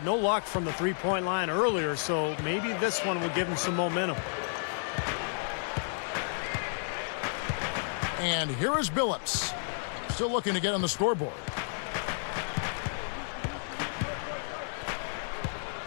no luck from the three-point line earlier, so maybe this one will give him some momentum. And here is Billups. Still looking to get on the scoreboard.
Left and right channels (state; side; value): silent; right; digital silence